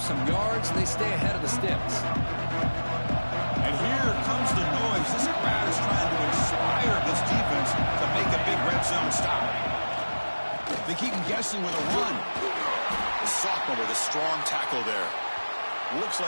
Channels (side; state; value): both; inverted; correlation -1.00